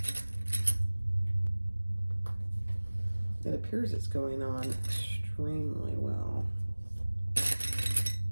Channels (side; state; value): both; inverted; correlation -1.00